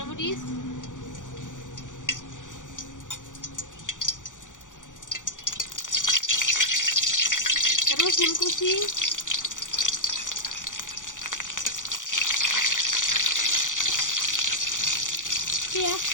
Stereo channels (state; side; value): late; right; 0.87 ms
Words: মরিচ, রসুন কুচি, পেঁয়াজ